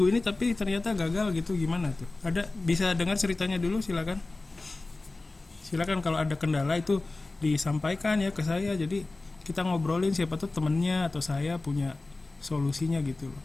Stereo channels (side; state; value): right; quieter; 3.2 dB